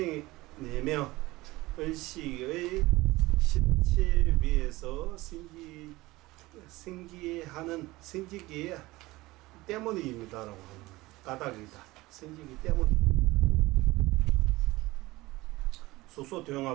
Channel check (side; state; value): left; quieter; 19.9 dB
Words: 의식의 실체 위에서 생기기 때문입니다라고 하는 까닭이다. 생기기 때문입니다.